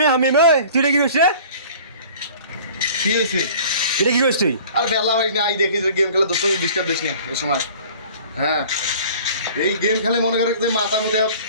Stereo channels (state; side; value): inverted; both; correlation -0.47